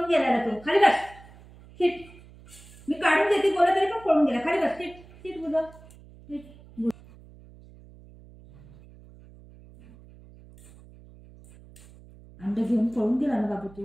गेला तो. खाली बस. सीट. मी काढून देते बोला तरी पण पळून गेला. खाली बस. सीट सीट बोला. अंडे घेऊन पळून गेला ना बाबू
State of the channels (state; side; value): noise; right; hum, 22 dB below the sound